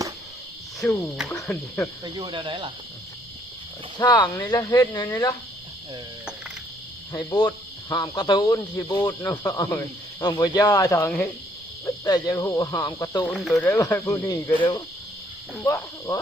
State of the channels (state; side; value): normal; both; correlation 0.66